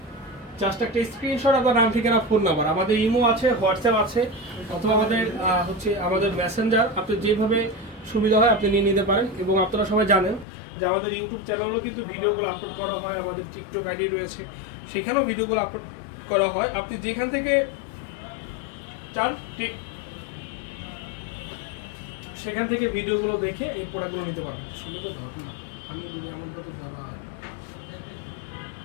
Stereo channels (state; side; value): drops out; right; at 10.5 s